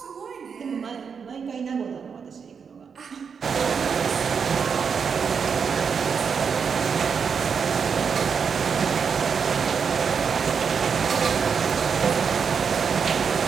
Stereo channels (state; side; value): quieter; left; 6.3 dB